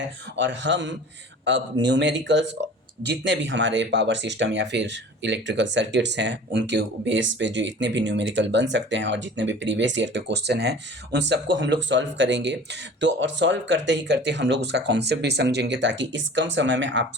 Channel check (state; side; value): normal; both; correlation 0.42